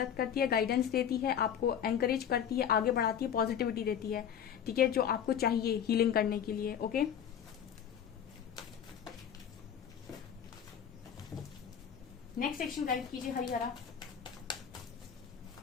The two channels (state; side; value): quieter; right; 8.7 dB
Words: करती है, गाइडेंस देती है, आपको एनकरेज करती है, आगे बढ़ाती है, पॉजिटिविटी देती है, ठीक है, जो आपको चाहिए हीलिंग करने के लिए। ओके, नेक्स्ट सेक्शन गाइड कीजिए हरिहरा।